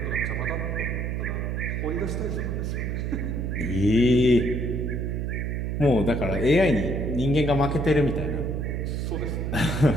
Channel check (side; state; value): right; noise; hum, 1 dB below the sound